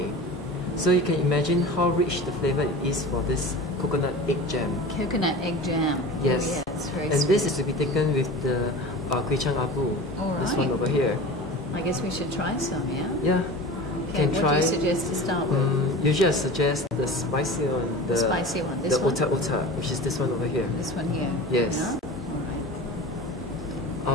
So you can imagine how rich the flavor it is for this coconut egg jam. Coconut egg jam. Yes. Oh, yeah, it's very And sweet. this is to be taken with the Gui Chang Abu. All This one right. over here. I guess we should try some, yeah? Yeah. Okay, Can what try. do you suggest to start with? Usually I suggest the spicy one. The spicy one. This the one? ota ota, which is this one over here. This one here? Yes. Yeah? All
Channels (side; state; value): both; normal; correlation 0.35